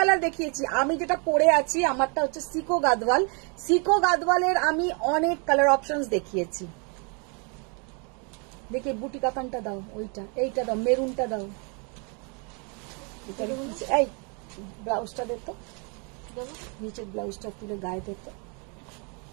দেখিয়েছি, আমি যেটা পরে আছি আমারটা হচ্ছে সিকো গাদওয়াল। সিকো গাদওয়ালের আমি অনেক কালার অপশনস দেখিয়েছি। দেখি বুটি কাতানটা দাও, ওইটা এইটা দাও, মেরুনটা দাও, এই ব্লাউজটা দে তো, নিচের ব্লাউজটা তুলে গায়ে দে তো।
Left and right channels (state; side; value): quieter; left; 35.4 dB